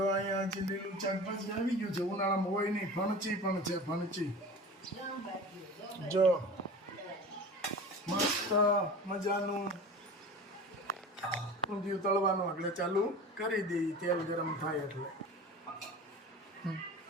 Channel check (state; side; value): normal; both; correlation 0.35